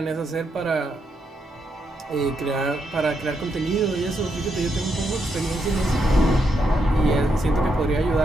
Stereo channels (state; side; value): normal; both; correlation 0.80